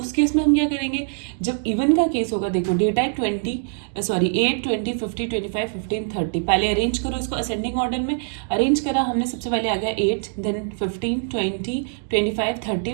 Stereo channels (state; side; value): silent; left; 62 dB below the other